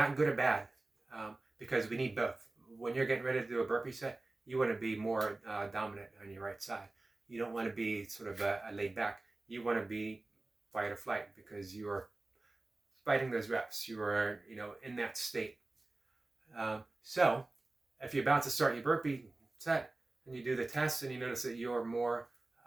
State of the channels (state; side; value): quieter; left; 3.0 dB